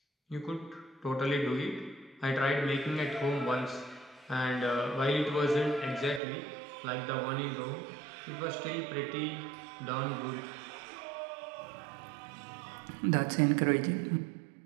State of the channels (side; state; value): left; drops out; at 6.2 s